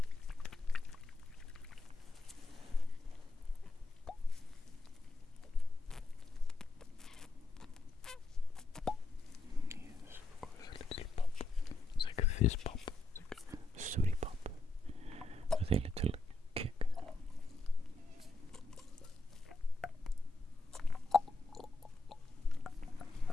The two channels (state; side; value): quieter; right; 3.2 dB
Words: Fizz pop, like a sooty pop, with a little kick.